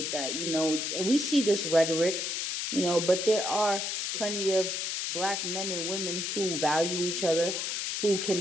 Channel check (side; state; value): left; noise; hiss, 2 dB below the sound